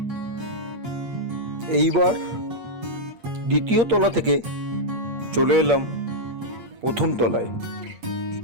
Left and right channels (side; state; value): left; late; 8.6 ms